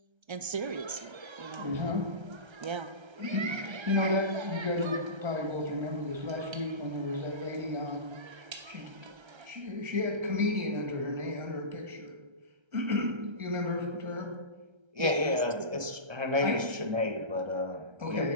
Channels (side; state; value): left; late; 1.3 ms